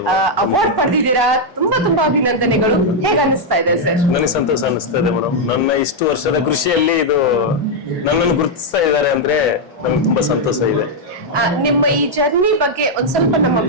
ಅವಾರ್ಡ್ ಪಡೆದಿದ್ದೀರಾ, ತುಂಬಾ ಅಭಿನಂದನೆಗಳು. ಹೇಗೆ ಅನಿಸ್ತಾ ಇದೆ ಸರ್? ನನಗೆ ಸಂತೋಷ ಅನಿಸ್ತಾ ಇದೆ ಮೇಡಮ್. ನನ್ನ ಇಷ್ಟು ವರ್ಷದ ಕೃಷಿಯಲ್ಲಿ ಇದು ನನ್ನನ್ನು ಗುರುತಿಸ್ತಾ ಇದ್ದಾರೆ ಅಂದ್ರೆ ನನಗೆ ತುಂಬಾ ಸಂತೋಷ ಇದೆ. ನಿಮ್ಮ ಈ ಜರ್ನಿ ಬಗ್ಗೆ ಒಂದ್ ಸ್ವಲ್ಪ ನಮ್ಮ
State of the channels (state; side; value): normal; both; correlation -0.02